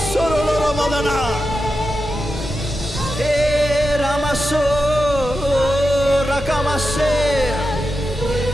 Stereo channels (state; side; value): normal; both; correlation 0.90